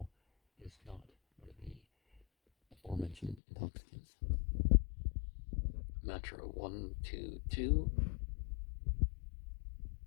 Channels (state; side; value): drops out; right; at 3.4 s